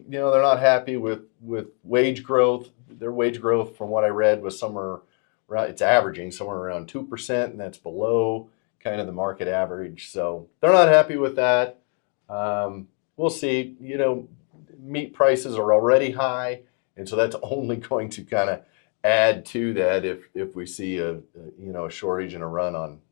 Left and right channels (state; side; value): quieter; right; 40.0 dB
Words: they're not happy with wage growth. Their wage growth, from what I read, was somewhere around, it's averaging somewhere around 2%, and that's below kind of the market average. So they're not happy with that. We'll see. Meat prices are already high, and so that's only going to kind of add to that if we see a shortage and a run